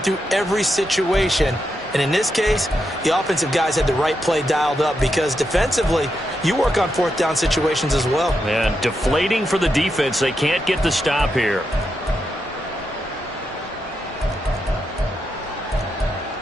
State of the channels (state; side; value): normal; both; correlation 0.85